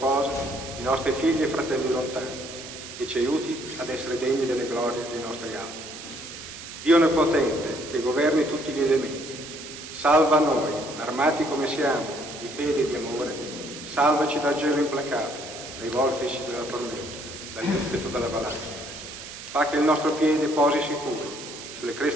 i nostri figli e fratelli lontani, e ci aiuti ad essere degni delle glorie dei nostri alpi. Dio Onnipotente, che governi tutti gli elementi, salva noi, armati come siamo, di fede e di amore, salvaci dal gelo implacabile, dai vortici della tormenta, dall'impeto della valanga. Fa che il nostro piede posi sicuro sulle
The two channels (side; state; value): right; noise; hiss, 12 dB below the sound